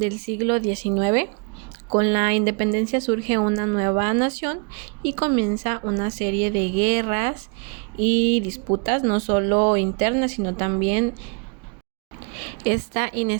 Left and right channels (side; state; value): left; quieter; 36.8 dB